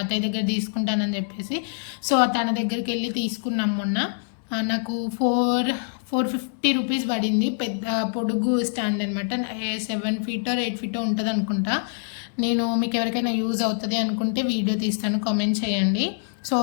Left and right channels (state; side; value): silent; right; digital silence